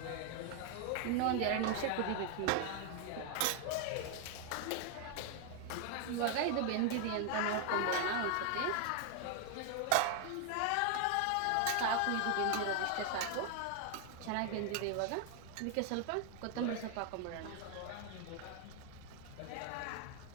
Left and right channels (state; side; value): different; both; correlation 0.00